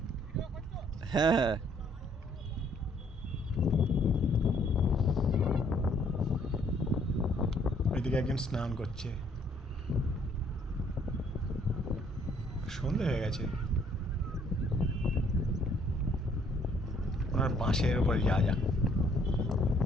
হ্যাঁ হ্যাঁ। এদিকে একজন স্নান করছে, সন্ধে হয়ে গেছে। ওনার বাঁশের উপর যা যা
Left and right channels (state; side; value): normal; both; correlation 0.64